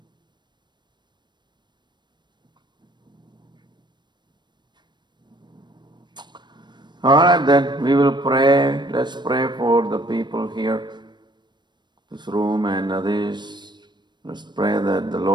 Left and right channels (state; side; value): late; left; 0.22 ms